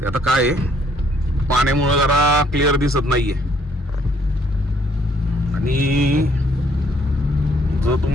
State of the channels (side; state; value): both; normal; correlation 0.66